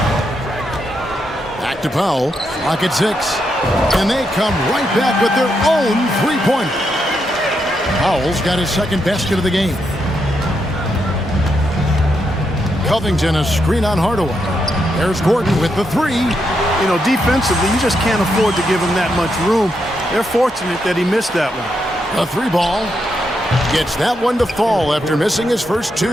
Back to Powell. Clock at 6. And they come right back with their own three-pointer. Powell's got his second basket of the game. Covington a screen on Hardaway. There's Gordon with the three. You know, defensively, you just can't afford to give him that much room. They're fortunate that he missed that one. The three ball gets that one to fall after missing his first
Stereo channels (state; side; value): normal; both; correlation 0.81